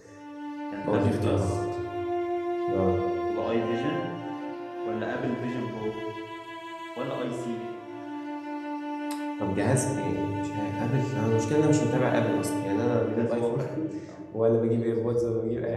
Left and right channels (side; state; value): both; identical; correlation 1.00